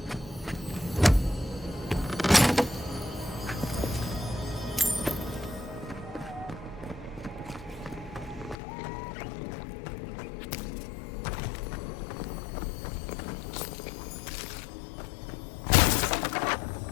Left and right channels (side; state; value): right; drops out; at 8.6 s